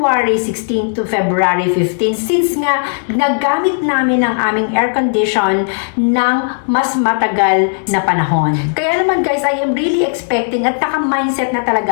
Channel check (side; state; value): right; silent; digital silence